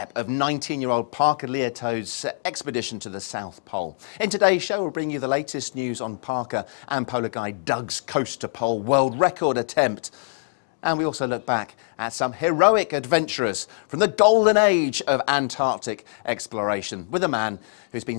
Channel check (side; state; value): right; silent; digital silence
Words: of 19-year-old Parker Liato's expedition to the South Pole. In today's show, we'll bring you the latest news on Parker and polar guide Doug's coast to pole world record attempt. And we also look back at some heroic adventurers from the golden age of Antarctic exploration with a man who's been